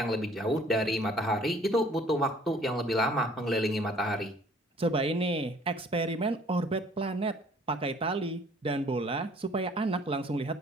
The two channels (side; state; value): both; normal; correlation 0.56